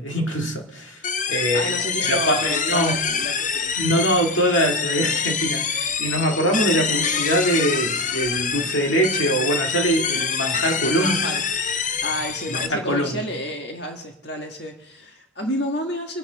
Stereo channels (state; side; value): normal; both; correlation 0.18